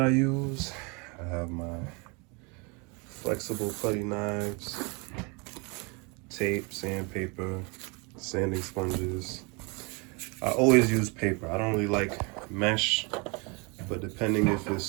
use. I have my flexible putty knives, tape, sandpaper, sanding sponges. I always use paper. I don't really like mesh, but depending if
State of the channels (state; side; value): quieter; left; 30.4 dB